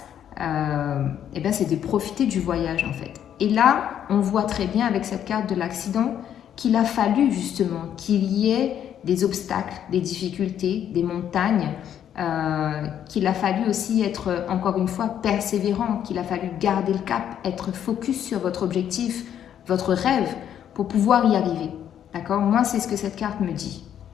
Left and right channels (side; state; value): right; quieter; 9.8 dB